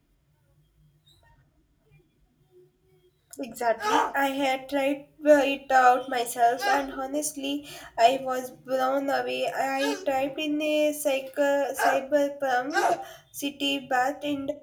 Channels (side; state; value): both; identical; correlation 1.00